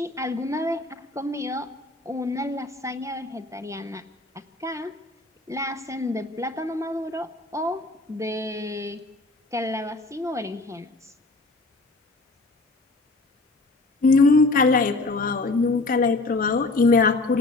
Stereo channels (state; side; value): quieter; right; 3.2 dB